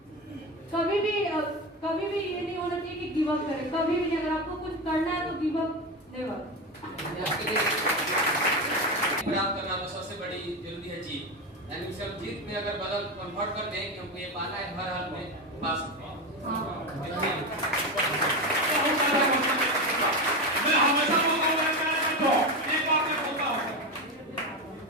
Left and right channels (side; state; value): both; normal; correlation 0.17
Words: कभी भी ये नहीं होना चाहिए कि गिव अप करें, कभी भी नहीं। अगर आपको कुछ करना है तो गिव अप नेवर। प्राप्त करना तो सबसे बड़ी जरूरी है जीत, यानी सब जीत में अगर बदल कन्वर्ट कर दें कि हमको ये पाना है, हर हाल में पा सकते हैं। मैं हमेशा एक बात मैं बोलता हूँ,